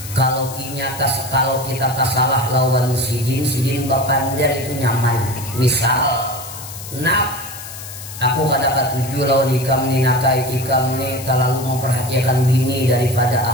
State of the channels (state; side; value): noise; left; hiss, 12 dB below the sound